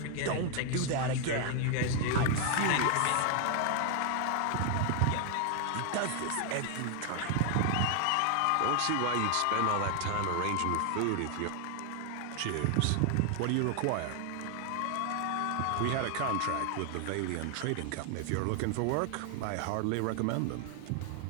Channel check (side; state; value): both; different; correlation 0.00